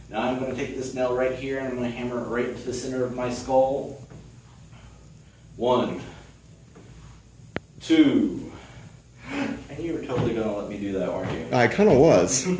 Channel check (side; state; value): both; identical; correlation 1.00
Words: Now I'm going to take this nail right here and I'm going to hammer it right into the center of my skull. 1, 2. And you were totally going to let me do that, weren't you? I kind of was.